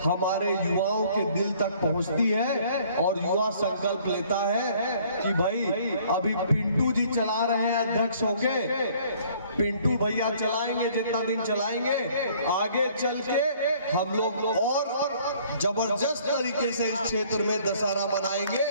हमारे युवाओं के दिल तक पहुंचती है और युवा संकल्प लेता है कि भाई अभी पिंटू जी चला रहे हैं अध्यक्ष होके, पिंटू भैया चलाएंगे जितना दिन चलाएंगे, आगे चल के हम लोग और जबरदस्त तरीके से इस क्षेत्र में दशहरा मनाएंगे।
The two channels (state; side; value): inverted; both; correlation -0.58